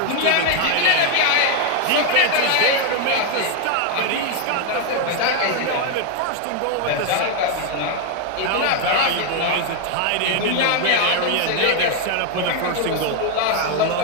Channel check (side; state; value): both; different; correlation 0.00